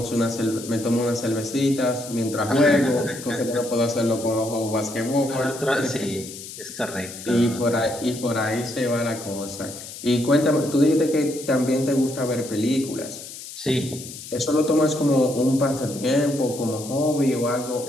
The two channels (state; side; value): noise; left; hiss, 12 dB below the sound